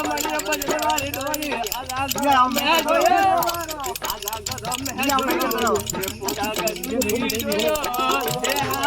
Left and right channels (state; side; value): identical; both; correlation 1.00